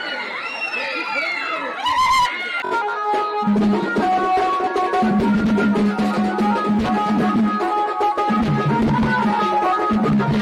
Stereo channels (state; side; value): identical; both; correlation 1.00